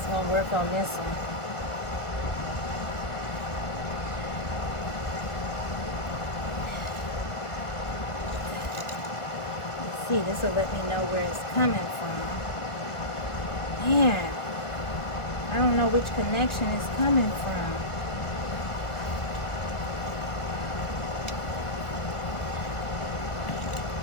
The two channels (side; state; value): right; late; 1.7 ms